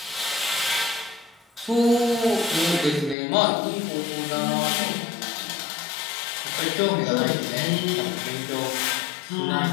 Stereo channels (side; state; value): right; drops out; at 3.2 s